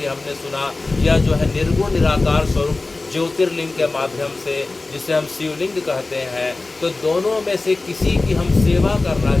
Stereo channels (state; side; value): quieter; right; 3.3 dB